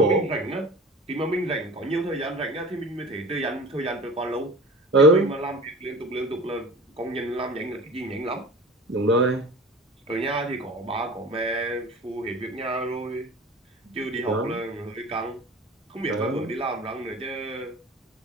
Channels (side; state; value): both; normal; correlation 0.39